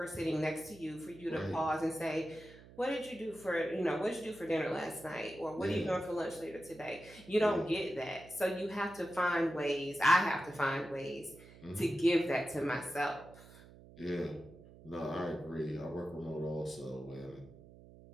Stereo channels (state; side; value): noise; right; hum, 20 dB below the sound